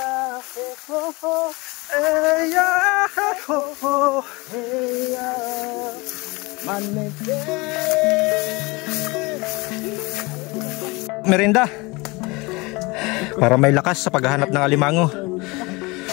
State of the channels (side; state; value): right; quieter; 25.1 dB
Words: ho ho. Eya ho ho. Eya manete. Merinda para may lakas sa paghahanap ng alimango.